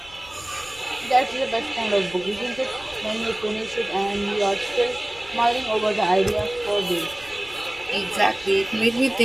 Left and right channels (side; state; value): left; noise; rumble, 23 dB below the sound